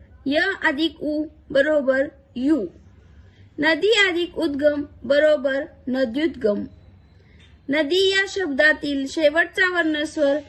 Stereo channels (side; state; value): both; identical; correlation 1.00